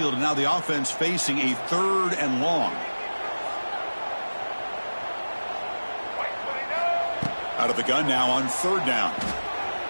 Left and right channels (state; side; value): inverted; both; correlation -1.00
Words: and now the offense facing a 3rd and long. Out of the gun now on 3rd down.